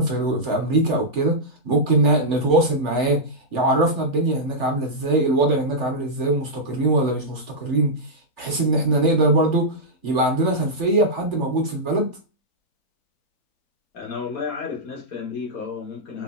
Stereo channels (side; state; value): right; late; 3.4 ms